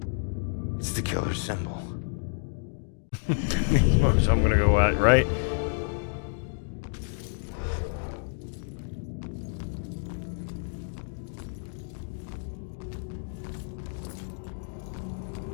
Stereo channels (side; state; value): right; silent; digital silence